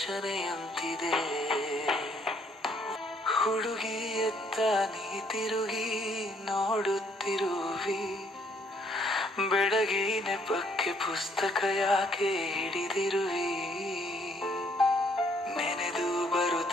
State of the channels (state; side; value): normal; both; correlation 0.67